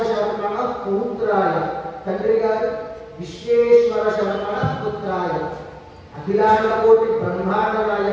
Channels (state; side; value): identical; both; correlation 1.00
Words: శర్మణ పుత్రాయ, తండ్రి గారు విశ్వేశ్వర శర్మణ పుత్రాయ, అఖిలాండ కోటి బ్రహ్మాండ